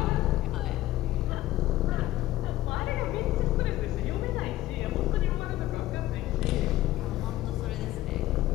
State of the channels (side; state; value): right; quieter; 15.6 dB